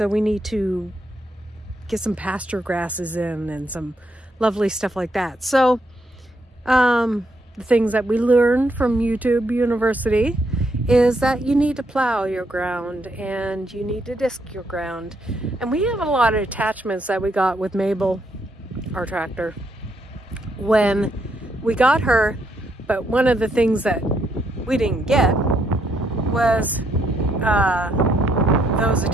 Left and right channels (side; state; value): both; normal; correlation 0.75